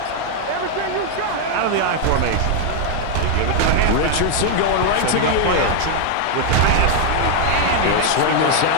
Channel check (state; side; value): different; both; correlation 0.00